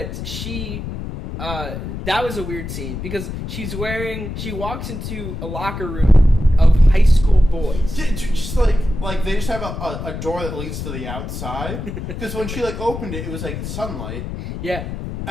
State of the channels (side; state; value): left; noise; rumble, 7 dB below the sound